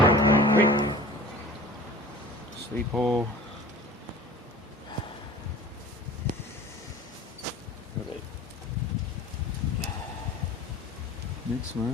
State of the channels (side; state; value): both; normal; correlation 0.42